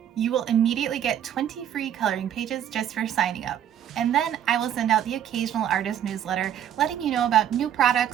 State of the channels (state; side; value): quieter; left; 10.1 dB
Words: You will immediately get 20 free coloring pages just for signing up. And then I will send out the occasional artist newsletter letting you know about new